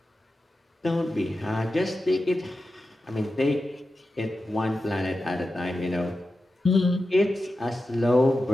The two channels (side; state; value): both; normal; correlation 0.92